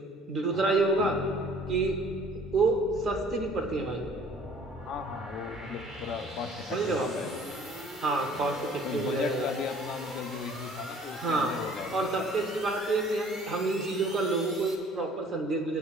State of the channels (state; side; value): normal; both; correlation 0.53